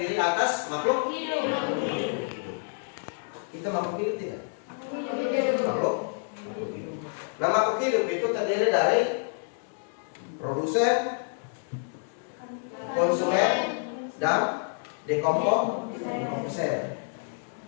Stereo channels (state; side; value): silent; right; 59 dB below the other